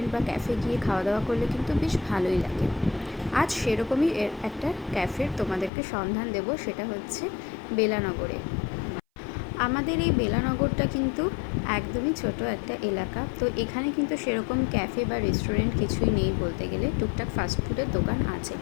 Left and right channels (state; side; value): drops out; right; at 5.7 s